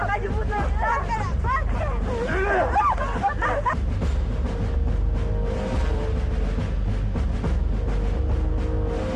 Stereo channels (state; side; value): identical; both; correlation 1.00